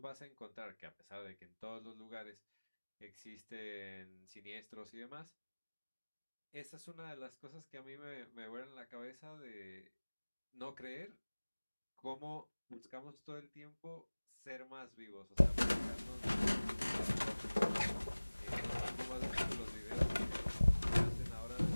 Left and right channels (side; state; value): both; inverted; correlation -1.00